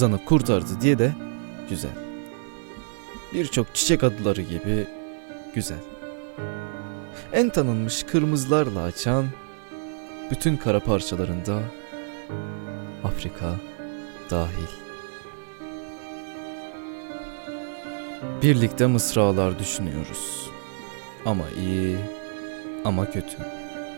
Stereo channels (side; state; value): left; silent; digital silence